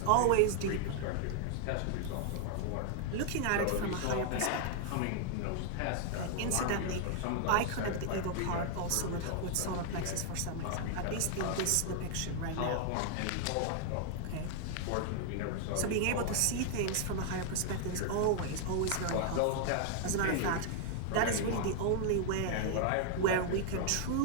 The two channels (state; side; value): different; both; correlation 0.00